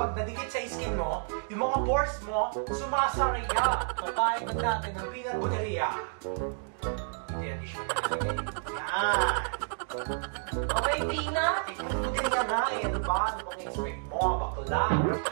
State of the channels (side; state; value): left; silent; digital silence